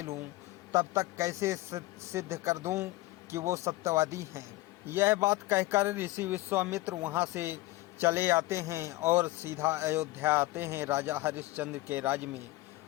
लूं तब तक कैसे सिद्ध कर दूं कि वो सत्यवादी हैं। यह बात कहकर ऋषि विश्वामित्र वहां से चले आते हैं और सीधा अयोध्या आते हैं राजा हरिश्चंद्र के राज में,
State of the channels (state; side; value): quieter; right; 19.0 dB